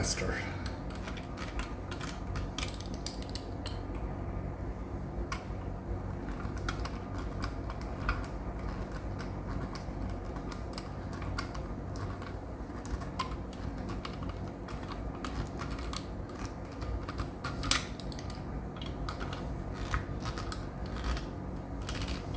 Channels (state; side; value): identical; both; correlation 1.00